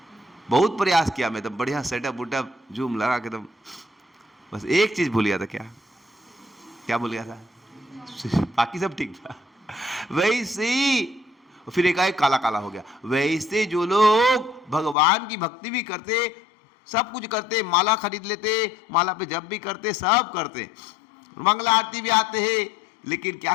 बहुत प्रयास किया मैं, तब बढ़िया सेटअप उटअप जूम लगा के, तब बस एक चीज भूल गया था। क्या क्या भूल गया था? बाकी सब ठीक था। वैसे फिर एकाएक काला काला हो गया। वैसे जो लोग भगवान की भक्ति भी करते, सब कुछ करते, माला खरीद लेते, माला पे जप भी करते, सब करते, मंगला आरती भी आते हैं, लेकिन क्या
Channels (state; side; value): drops out; right; at 15.0 s